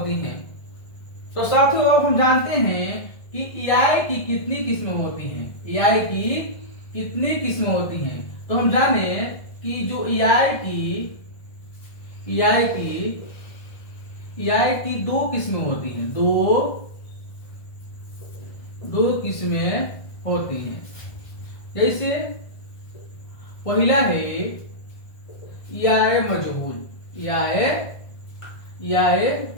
हैं। तो साथियों अब हम जानते हैं कि EI की कितनी किस्में होती हैं, EI की कितनी किस्में होती हैं। तो हम जाने कि जो EI की दो किस्में होती हैं, दो किस्में होती हैं। जैसे पहला है EI मजहूल, EI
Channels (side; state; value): right; late; 1.6 ms